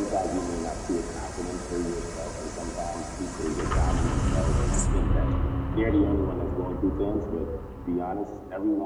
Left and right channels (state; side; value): identical; both; correlation 1.00